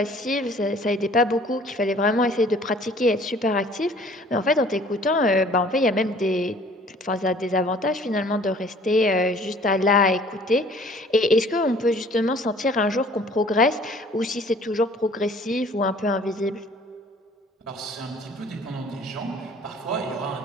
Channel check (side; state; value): both; normal; correlation 0.53